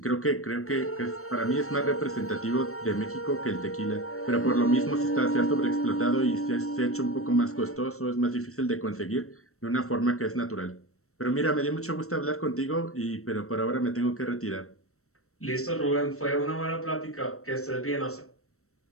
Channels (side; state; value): right; late; 0.63 ms